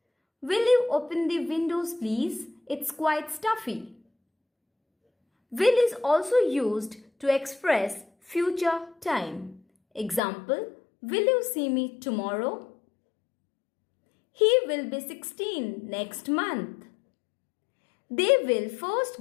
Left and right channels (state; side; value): drops out; right; at 10.2 s